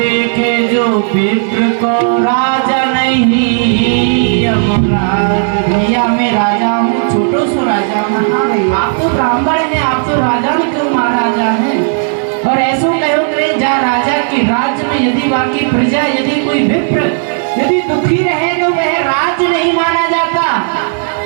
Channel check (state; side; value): silent; left; 67 dB below the other